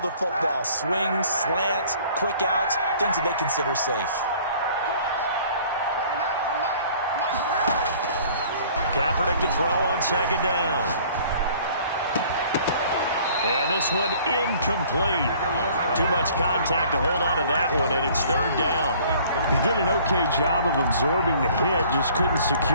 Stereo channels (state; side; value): inverted; both; correlation -0.53